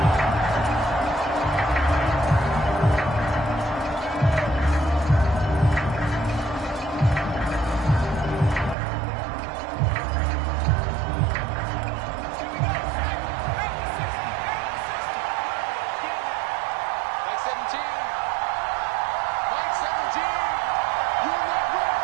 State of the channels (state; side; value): drops out; left; at 8.8 s